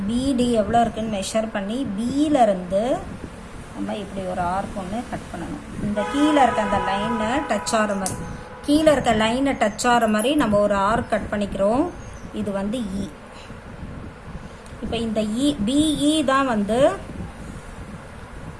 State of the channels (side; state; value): both; identical; correlation 1.00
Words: பிடி எவ்வளோ இருக்குன்னு மெஷர் பண்ணி பியிலேருந்து நம்ம இப்படி ஒரு ஆர்க் ஒன்று கட் பண்ணணும். இந்த கீழே இருக்க அந்த லைனை டச் ஆகிற மாதிரி நம்ம ஒரு ஆர்க் கட் பண்ணிக்கிறோம். இது வந்து இ. இப்போ இந்த பிஇ தான் வந்து